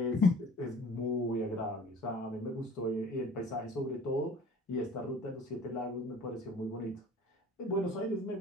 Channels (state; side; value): normal; both; correlation 0.47